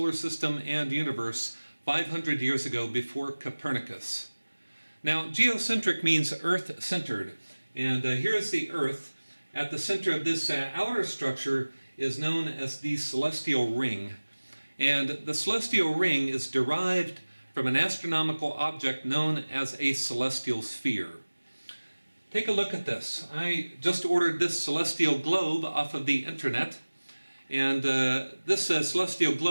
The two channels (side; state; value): both; inverted; correlation -1.00